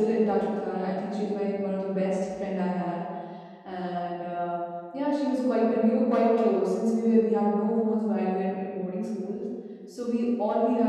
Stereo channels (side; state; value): both; identical; correlation 1.00